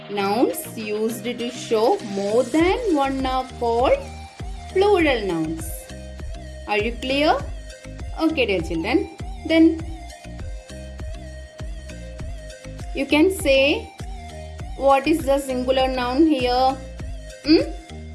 Nouns used to show more than one are called plural nouns. Are you clear? Okay, dear children. Then you can say what is the singular noun here?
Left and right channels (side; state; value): both; identical; correlation 1.00